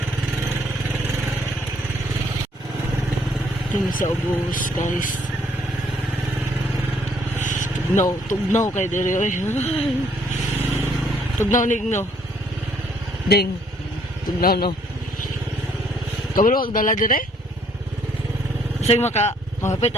Tingin sa ubos guys. Tugnaw kay diri oy. Tugnaw nigno. Ding. Tugnaw no. Kabalo wag dala dire. Sige makapit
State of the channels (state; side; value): normal; both; correlation 0.65